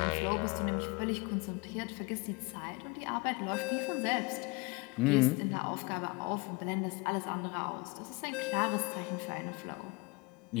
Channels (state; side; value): quieter; right; 26.5 dB